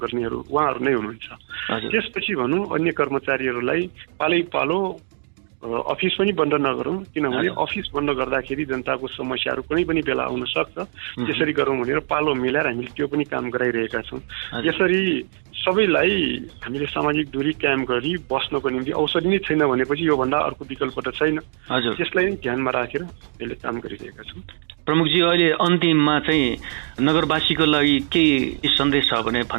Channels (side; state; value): left; silent; digital silence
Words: उहाँहरू नै हुनुहुन्छ। त्यसपछि भनौँ अन्य कर्मचारीहरूलाई पालै पालो अफिस पनि बन्द नगरौँ, किनभने अफिस बन्द गर्दाखेरि जनताको समस्याहरू कुनै पनि बेला आउन सक्छ। त्यसरी गरौँ भनेर पालो मिलाएर हामीले त्यो पनि काम गराइरहेका छौँ। यसरी सबैलाई हामीले सामाजिक दूरी कायम गरी बस्नको निम्ति औषधि नै छैन भनेपछि योभन्दा अर्को विकल्प त छैन। त्यसलाई नै ध्यानमा राखेर यसले काम गरिरहेका छौँ। प्रमुखजी, अहिले अन्तिममा चाहिँ नगरवासीको लागि के सन्देश छ भने